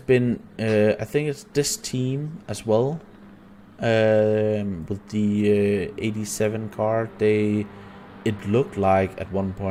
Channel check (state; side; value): identical; both; correlation 1.00